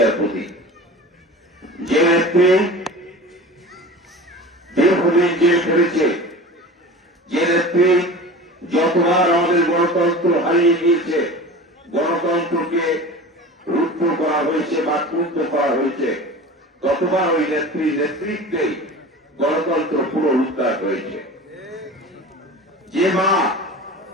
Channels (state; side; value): normal; both; correlation 0.36